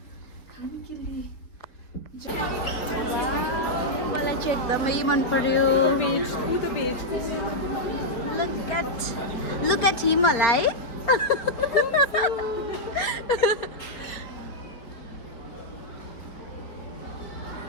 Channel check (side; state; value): right; late; 4.3 ms